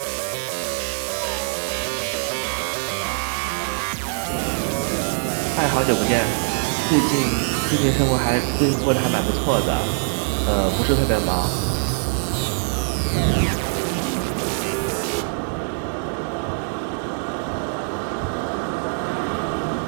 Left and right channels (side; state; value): left; silent; 63 dB below the other